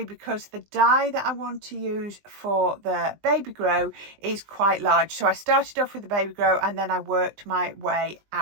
because the die that I want to use for the baby grow is quite large. So I started off with the baby grow and then I worked my way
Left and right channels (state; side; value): late; left; 20 ms